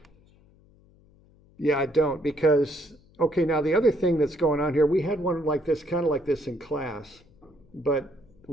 Yeah, I don't, because, okay, now the other thing that's going on here, we had one like this, kind of like this in class, but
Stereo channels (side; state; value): left; noise; hum, 29 dB below the sound